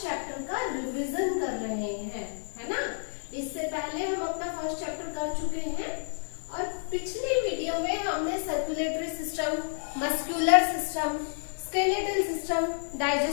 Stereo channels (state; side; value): silent; right; 58 dB below the other